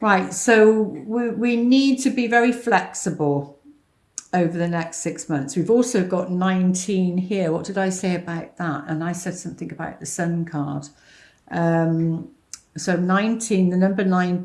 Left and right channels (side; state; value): both; identical; correlation 1.00